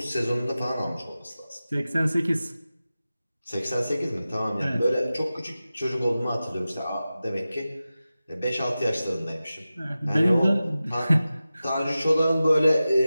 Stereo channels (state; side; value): inverted; both; correlation -0.95